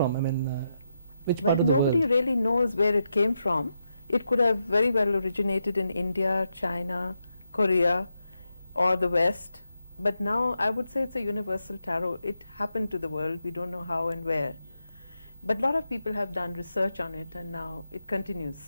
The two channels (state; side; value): inverted; both; correlation -0.84